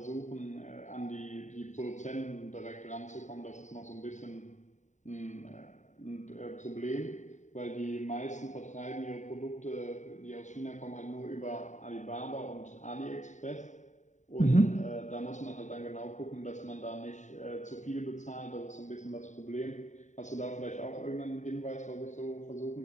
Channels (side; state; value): right; late; 0.35 ms